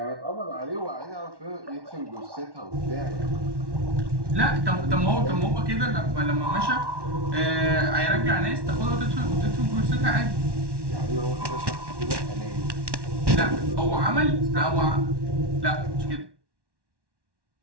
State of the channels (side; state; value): left; late; 1.1 ms